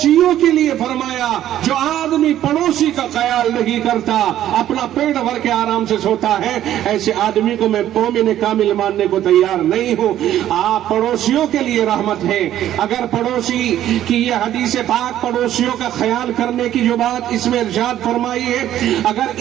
کے لیے فرمایا جو آدمی پڑوسی کا خیال نہیں کرتا، اپنا پیٹ بھر کے آرام سے سوتا ہے، ایسے آدمی کو میں مومن کامل ماننے کو تیار نہیں ہوں۔ آپ پڑوسیوں کے لیے رحمت ہے۔ اگر پڑوسی کی یہ حدیث پاک پڑوسیوں کا خیال کرنے کی جو بات اس میں ارشاد فرمائی ہے، اگر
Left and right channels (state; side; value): quieter; left; 12.1 dB